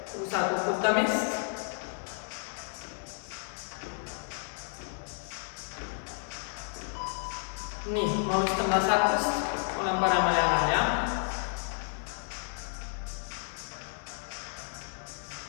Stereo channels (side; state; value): right; silent; 57 dB below the other